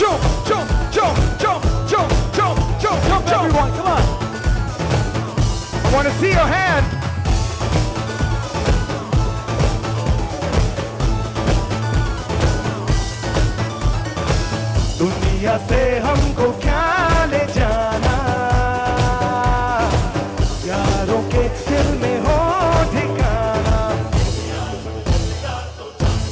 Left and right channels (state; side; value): identical; both; correlation 1.00